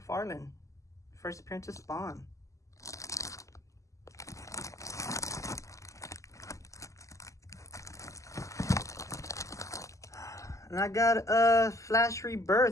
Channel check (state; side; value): late; right; 0.16 ms